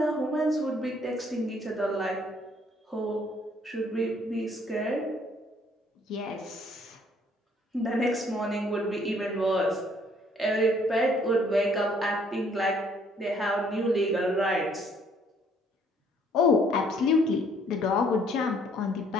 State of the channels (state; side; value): normal; both; correlation 0.63